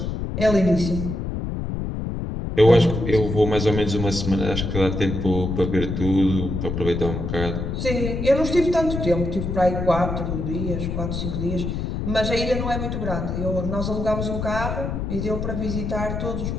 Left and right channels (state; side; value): noise; left; rumble, 3 dB below the sound